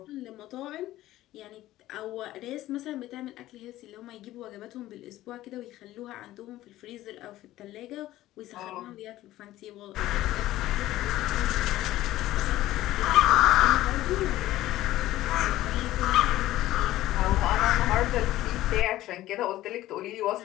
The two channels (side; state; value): right; quieter; 15.3 dB